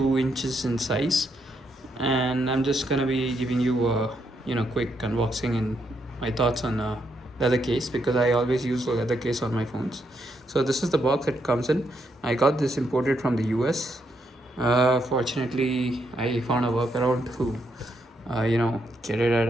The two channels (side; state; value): both; normal; correlation 0.78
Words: inches in size, and I'm just gonna be giving you a quick unboxing and my thoughts on leather case, because I always use a leather case on my phones. So this is the box it comes in. I got this imported from the US. Fortunately, I found a workaround to get it at